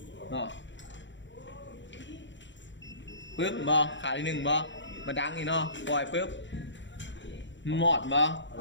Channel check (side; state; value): right; late; 0.54 ms